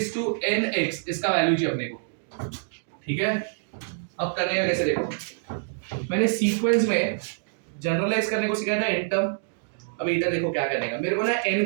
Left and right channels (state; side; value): silent; left; digital silence